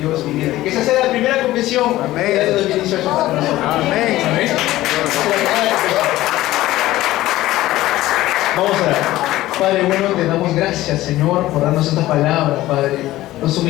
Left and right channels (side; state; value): right; quieter; 16.1 dB